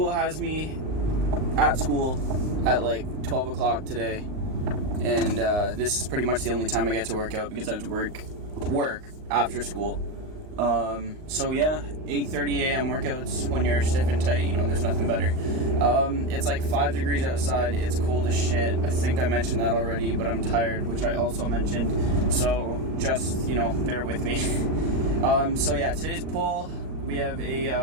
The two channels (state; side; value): late; left; 38 ms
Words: has me at school at like 12 o'clock today, and this is pretty much the only time I get to work out because I have to work after school. So yeah, 8:30 a.m. workouts when you're stiff and tight, you know, there's nothing better. It's like 5 degrees outside, it's cold as shit. I think I mentioned that already, but I'm tired, which I also mentioned, so just, you know, bear with me. So yeah, today's pull, we have